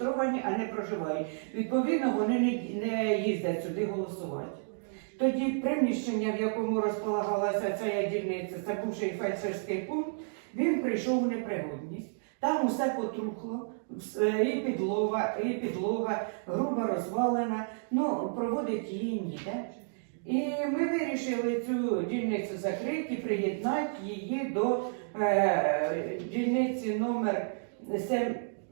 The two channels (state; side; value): silent; left; digital silence